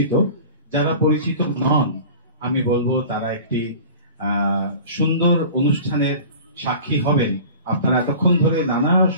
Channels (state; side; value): inverted; both; correlation -0.40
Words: যারা পরিচিত নন, আমি বলবো তারা একটি সুন্দর অনুষ্ঠানের সাক্ষী হবেন। আপনারা এতক্ষণ ধরে নানা